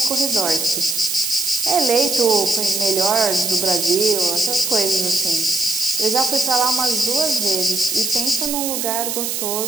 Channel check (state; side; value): noise; right; hiss, 2 dB below the sound